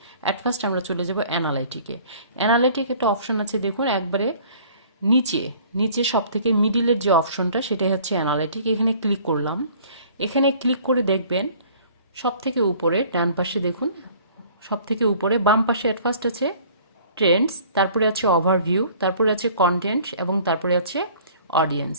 অ্যাট ফার্স্ট আমরা চলে যাব অ্যানালাইটিকে। অ্যানালাইটিক একটা অপশন আছে, দেখুন একবারে নিচে নিচে সব থেকে মিডিলের যে অপশনটা সেটাই হচ্ছে অ্যানালাইটিক। এখানে ক্লিক করলাম। এখানে ক্লিক করে দেখবেন সব থেকে উপরে ডান পাশে দেখুন, সব থেকে উপরে বাম পাশে অ্যাট ফার্স্ট আছে ট্রেন্ডস, তারপরে আছে ওভারভিউ, তারপরে আছে কন্টেন্ট এবং তারপরে আছে অডিয়েন্স।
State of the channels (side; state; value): both; inverted; correlation -0.52